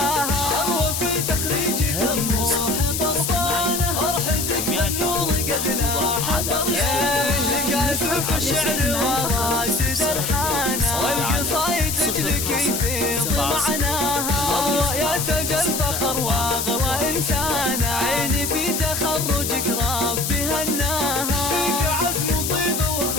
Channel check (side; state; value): left; noise; hiss, 2 dB below the sound